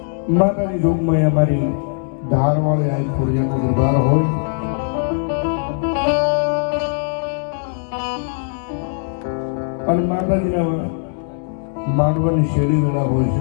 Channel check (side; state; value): right; silent; digital silence